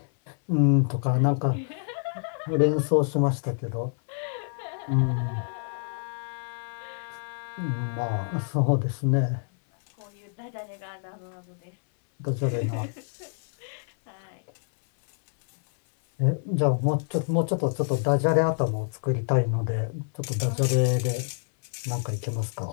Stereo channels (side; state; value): right; silent; 60 dB below the other